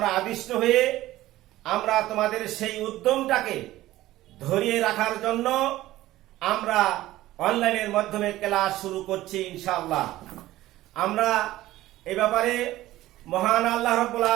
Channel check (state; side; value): quieter; left; 15.9 dB